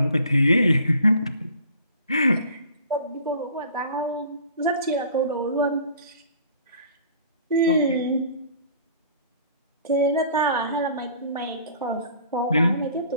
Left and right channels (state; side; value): inverted; both; correlation -0.50